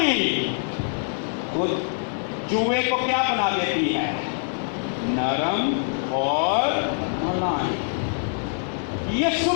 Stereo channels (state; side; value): silent; right; 62 dB below the other